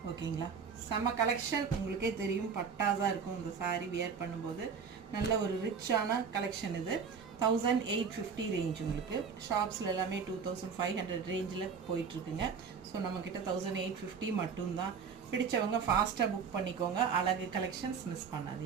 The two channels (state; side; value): quieter; left; 6.1 dB